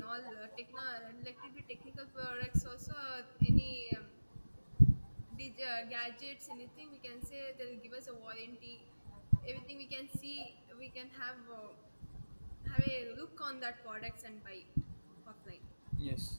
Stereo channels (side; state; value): both; inverted; correlation -1.00